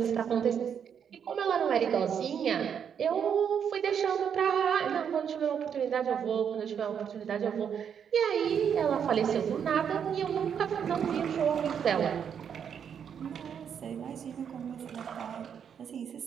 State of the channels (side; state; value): left; quieter; 7.9 dB